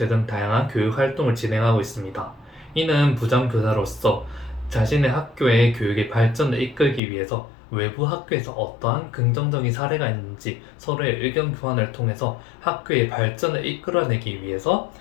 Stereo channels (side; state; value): right; drops out; at 7.0 s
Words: 등 다양한 교육 활동을 진행하고 있습니다. 이는 부장교사로서 자신의 학교의 교육의 발전을 이끌기 위해서 외부 학교에서 어떠한 긍정적인 사례가 있는지 서로의 의견 교환을 통해서 학교의 발전을 이끌어내기 위해서